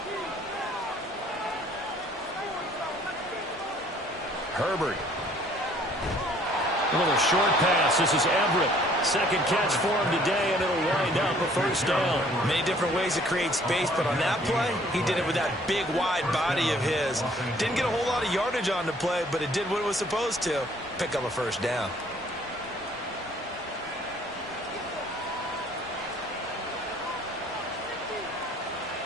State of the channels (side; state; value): both; normal; correlation 0.58